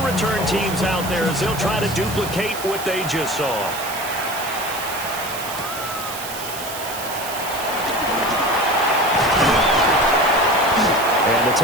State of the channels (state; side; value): noise; right; hiss, 9 dB below the sound